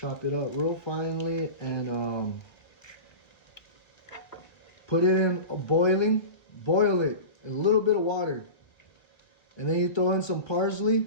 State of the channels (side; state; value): right; late; 1.2 ms